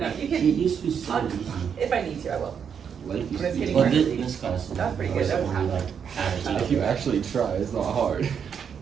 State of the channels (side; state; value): left; quieter; 7.3 dB